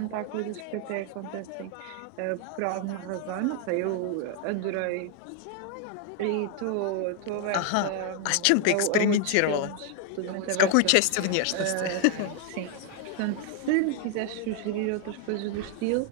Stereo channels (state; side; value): different; both; correlation 0.00